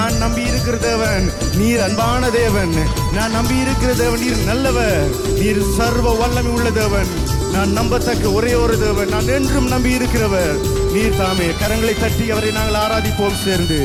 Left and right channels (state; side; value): identical; both; correlation 1.00